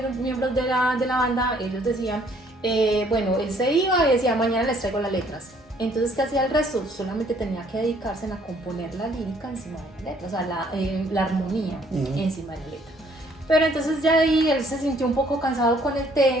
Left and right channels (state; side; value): normal; both; correlation 0.63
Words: miembros de la banda, ellos decían, bueno, él se iba y decía, mañana les traigo las letras. Entonces, ¿qué hacía el resto? Solamente tenía que dedicarse a componer la lírica encima de la letra, o sea, la armonía encima de la letra. Pero entonces ya ahí él se sintió un poco cansado con el